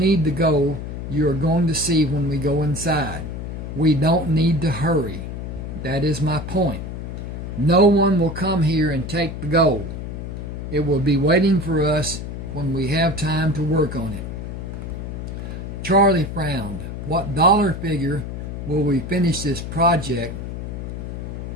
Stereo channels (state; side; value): noise; left; hum, 7 dB below the sound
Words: the gold you are going to see when we go inside. We don't need to hurry. That is my point. No one will come here and take the gold. It will be waiting for us when we have time to work on it. Charlie frowned. What dollar figure will we finish this project?